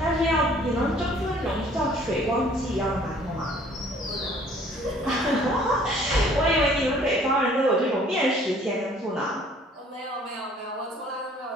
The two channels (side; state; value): both; normal; correlation 0.56